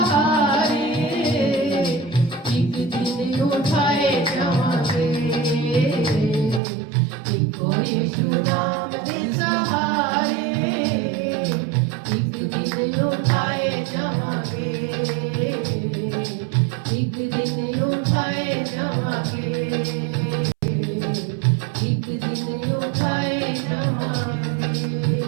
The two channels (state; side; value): drops out; left; at 6.6 s